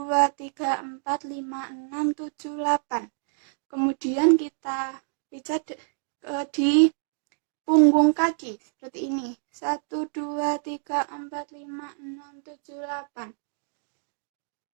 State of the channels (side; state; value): left; silent; digital silence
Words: 3, 4, 5, 6, 7, 8. Kemudian kita pijat di punggung kaki seperti ini. 1, 2, 3, 4, 5, 6, 7, 8.